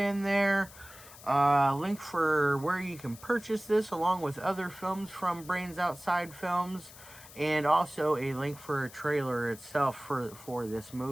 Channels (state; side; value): noise; left; hiss, 19 dB below the sound